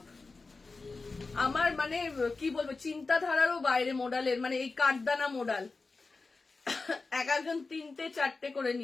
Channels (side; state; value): right; quieter; 3.9 dB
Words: আমার মানে কি বলবো, চিন্তাধারারও বাইরে মোডালের, মানে এই কাঠদানা মোডাল এক একজন 3টে 4টে করে